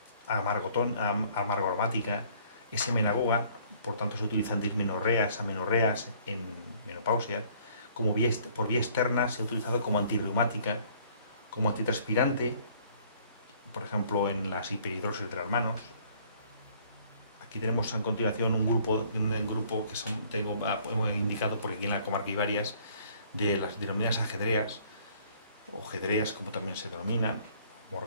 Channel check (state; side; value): inverted; both; correlation -0.58